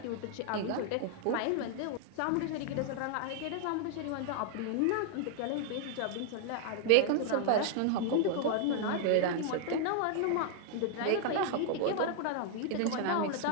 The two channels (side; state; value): both; different; correlation 0.00